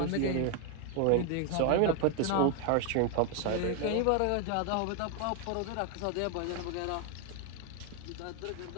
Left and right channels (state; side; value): different; both; correlation 0.01